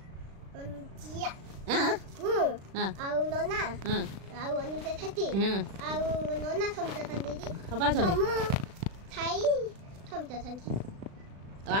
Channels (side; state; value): left; late; 36 ms